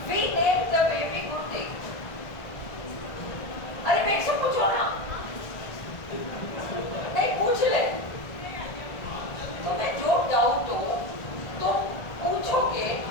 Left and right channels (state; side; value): late; right; 1.6 ms